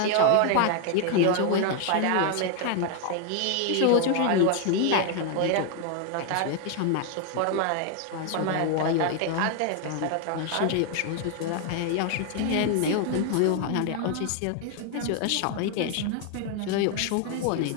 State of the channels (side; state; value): both; different; correlation 0.01